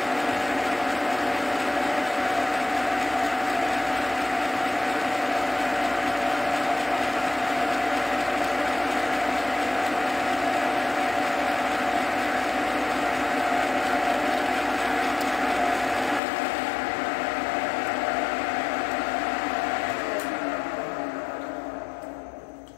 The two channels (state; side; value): drops out; right; at 16.2 s